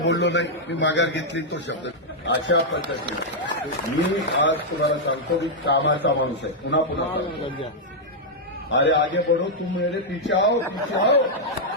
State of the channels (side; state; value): both; normal; correlation -0.04